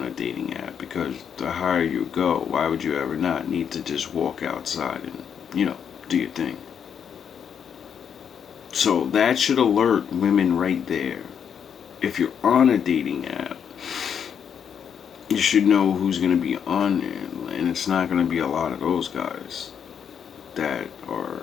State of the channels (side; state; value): right; quieter; 7.8 dB